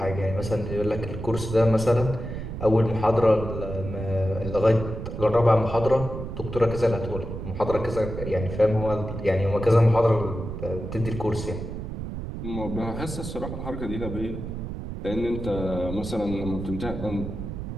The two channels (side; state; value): right; noise; rumble, 7 dB below the sound